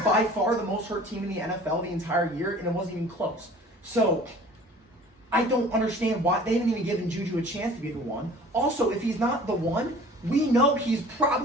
by far the most hurt team in the NFL the entire year, and it wasn't even close. So I don't understand why they didn't even give Juju a chance to be the one. Also, if he's not the one, we know he's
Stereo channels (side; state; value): both; normal; correlation 0.47